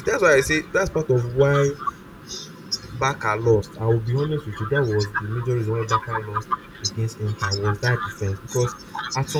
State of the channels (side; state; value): both; identical; correlation 1.00